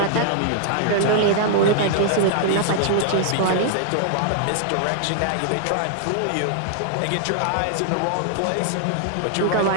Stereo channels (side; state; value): both; different; correlation -0.01